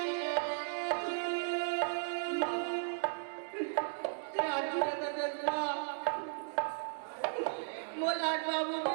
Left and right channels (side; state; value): left; silent; digital silence